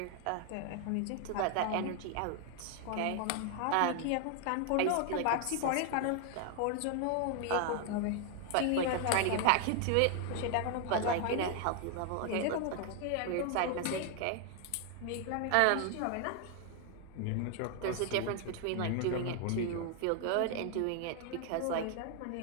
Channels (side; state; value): both; different; correlation 0.00